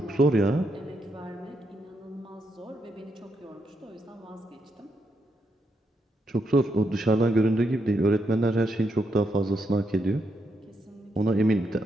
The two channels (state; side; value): normal; both; correlation 0.81